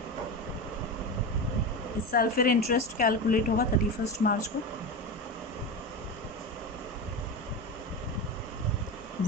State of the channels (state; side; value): normal; both; correlation 0.21